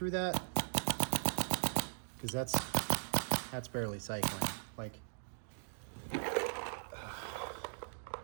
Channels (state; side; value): silent; left; digital silence